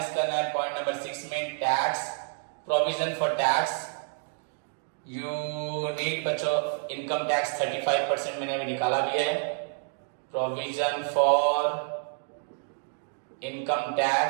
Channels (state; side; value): silent; left; digital silence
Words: करना है पॉइंट नंबर 6 में tax, provision for tax. You need बच्चों इनकम टैक्स 35% मैंने अभी निकाला भी है. प्रोविजन फॉर इनकम